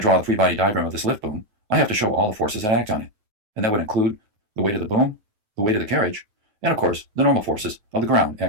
the free body diagram of this lift boom, I have to show all the forces that act on it. And that would include the weight of the boom, the weight of the carriage, and of course, the normal forces of the ground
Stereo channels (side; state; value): left; late; 9.3 ms